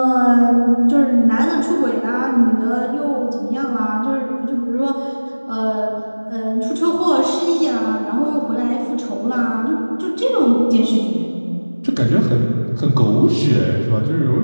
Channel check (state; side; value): inverted; both; correlation -1.00